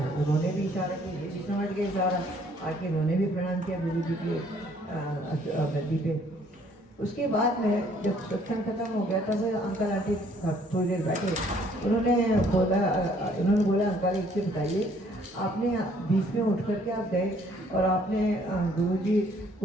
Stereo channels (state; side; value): normal; both; correlation 0.62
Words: उन्होंने भी इशारा किया, ये भी समझ गए इशारा, आके उन्होंने भी प्रणाम किया गुरु जी की गद्दी पे। उसके बाद में जब सत्संग खत्म हो गया तब अंकल आंटी थोड़ी देर बैठे, उन्होंने बोला अंकल एक चीज़ बताइए, आपने बीच में उठ करके आप गए और आपने गुरुजी